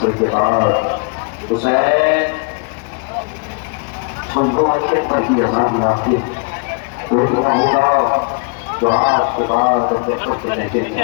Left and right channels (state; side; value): quieter; right; 36.1 dB